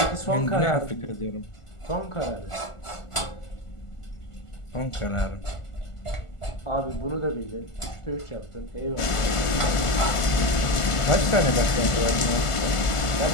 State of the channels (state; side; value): late; right; 1.4 ms